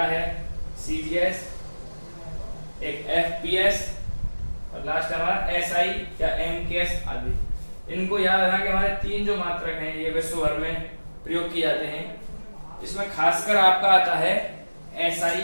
है CGS, एक FPS, और लास्ट हमारा SI या MKS आदि। इनको याद रखना कि हमारे तीन जो मात्रक हैं ये विश्व भर में प्रयोग किए जाते हैं। इसमें खासकर आपका आता है SI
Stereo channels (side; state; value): both; inverted; correlation -1.00